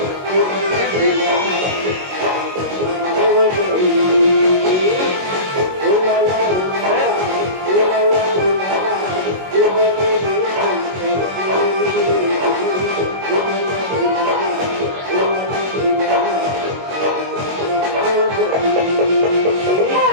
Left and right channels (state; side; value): late; left; 22 ms